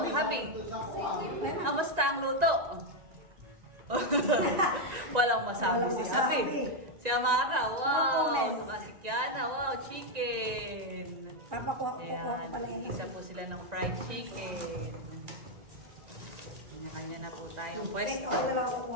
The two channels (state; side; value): late; left; 1.9 ms